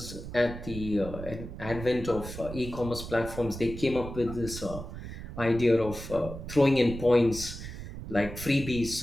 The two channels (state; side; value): noise; right; rumble, 10 dB below the sound